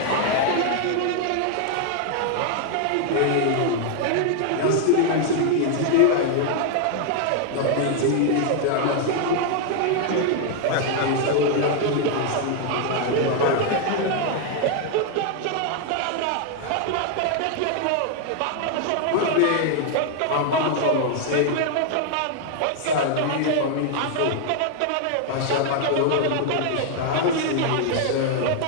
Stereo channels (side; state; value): both; different; correlation 0.00